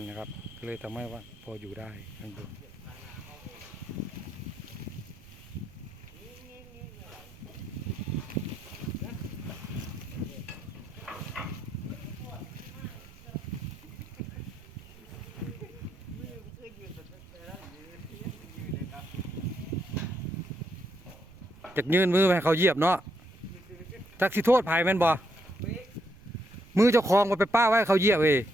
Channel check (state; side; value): noise; right; rumble, 21 dB below the sound